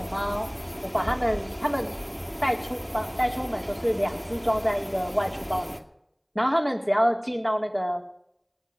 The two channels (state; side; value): identical; both; correlation 1.00